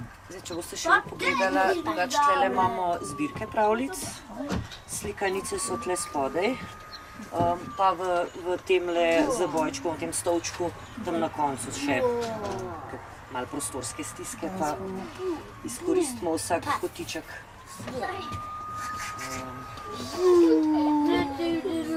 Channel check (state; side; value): identical; both; correlation 1.00